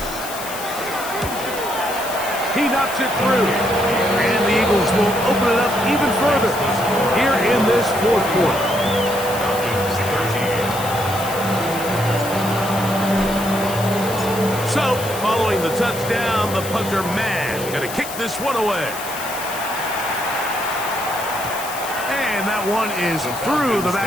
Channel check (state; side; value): noise; left; hiss, 10 dB below the sound